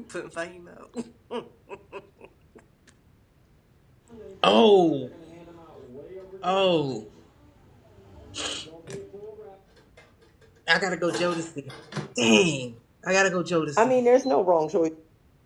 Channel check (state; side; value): identical; both; correlation 1.00